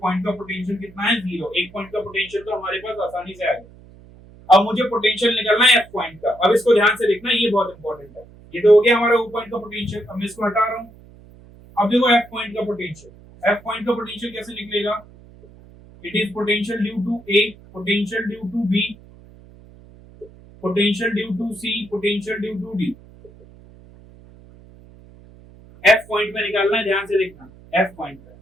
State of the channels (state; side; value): noise; right; hum, 23 dB below the sound